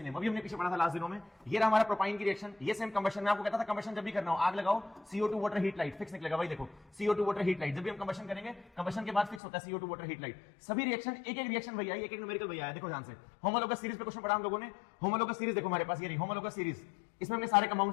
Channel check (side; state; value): right; drops out; at 9.4 s